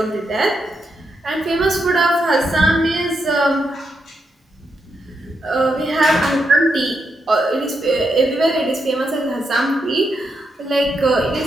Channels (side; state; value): both; normal; correlation 0.83